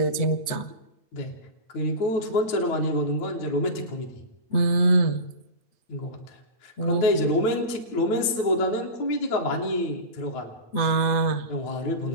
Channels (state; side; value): late; right; 9.4 ms